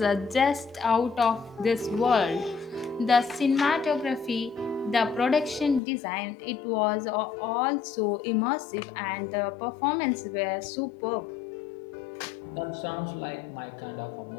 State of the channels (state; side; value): drops out; right; at 5.8 s